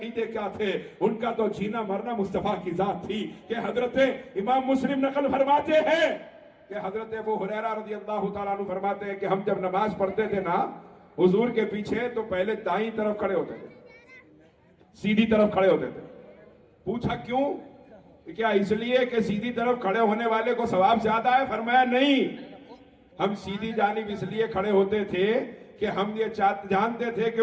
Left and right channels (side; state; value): both; identical; correlation 1.00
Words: کیا تھے. ان کا تو جینا مرنا مصطفیٰ کی ذات تھی. کہ حضرت امام مسلم نقل فرماتے ہیں کہ حضرت ابو ہریرہ رضی اللہ تعالیٰ عنہ فرماتے ہیں کہ ہم جب نماز پڑھتے تھے نا حضور کے پیچھے تو پہلے دائیں طرف کھڑے ہوتے تھے, سیدھی طرف کھڑے ہوتے تھے. پوچھا کیوں؟ کیا اس لیے کہ سیدھی طرف کھڑے ہونے والے کو ثواب زیادہ ہے؟ فرمایا نہیں, ہم سیدھی جانب اس لیے کھڑے ہوتے تھے کہ ہم یہ جانتے تھے کہ